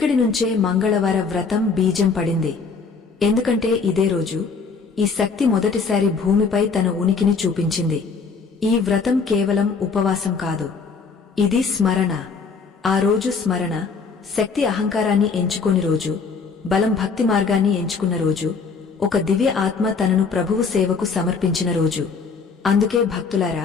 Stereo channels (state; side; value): quieter; right; 5.0 dB